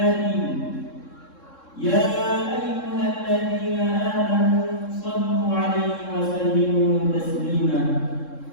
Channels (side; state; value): right; late; 3.7 ms